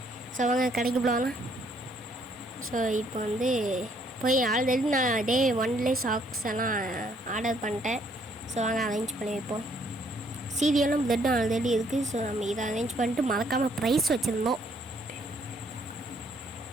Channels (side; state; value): both; normal; correlation 0.67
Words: ஸோ வாங்க கடைக்கு போகலாம். ஸோ இப்போ வந்து போய் ஆல்ரெடி நான் டே 1லேயே சாக்ஸ் எல்லாம் ஆர்டர் பண்ணிட்டேன். ஸோ வாங்க அரேஞ்ச் பண்ணி வைப்போம். சீரியலும் பிளட்டும் ஆல்ரெடி இருக்குது. ஸோ நம்ம இதை அரேஞ்ச் பண்ணிட்டு மறக்காமல் ப்ரைஸ் வச்சுருந்தோம்.